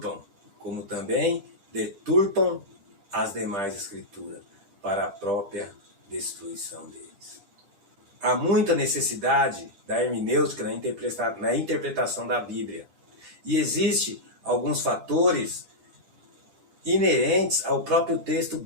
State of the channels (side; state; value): left; late; 10 ms